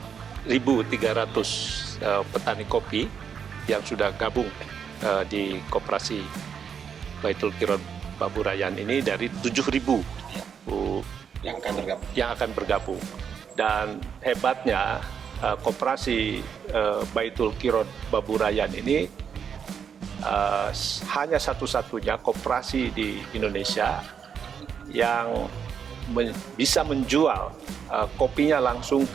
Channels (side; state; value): left; quieter; 7.3 dB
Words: petani kopi yang sudah gabung di koperasi Baitul Qirot Baburayan ini dari 7.000 yang akan bergabung. Dan hebatnya koperasi Baitul Qirot Baburayan ini hanya satu-satunya koperasi di Indonesia yang bisa menjual kopinya langsung